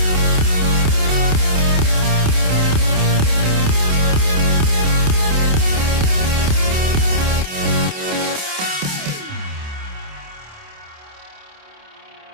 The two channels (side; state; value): left; late; 27 ms